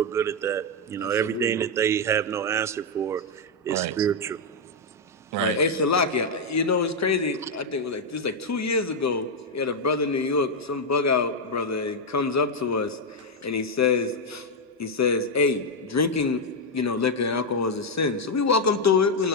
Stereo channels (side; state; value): both; normal; correlation 0.01